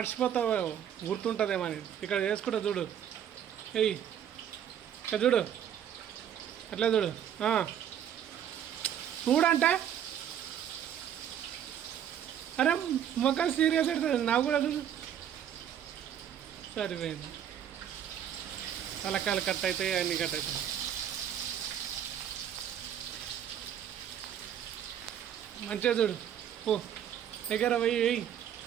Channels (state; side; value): quieter; left; 9.6 dB